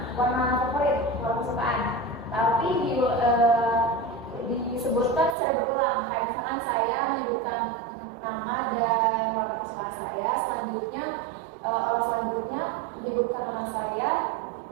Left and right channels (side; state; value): left; drops out; at 5.4 s